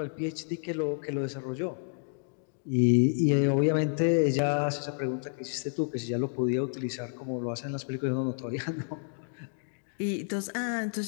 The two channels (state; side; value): silent; right; digital silence